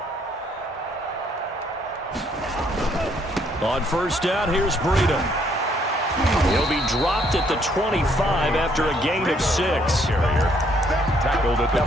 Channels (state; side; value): normal; both; correlation 0.68